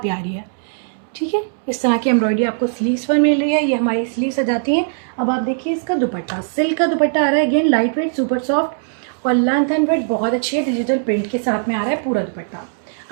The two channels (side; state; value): left; silent; 66 dB below the other